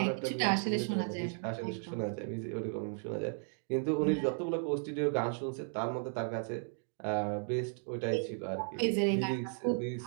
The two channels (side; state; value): left; silent; 55 dB below the other